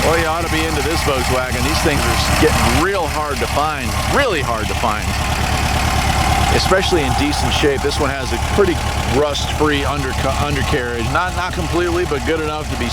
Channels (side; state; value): both; identical; correlation 1.00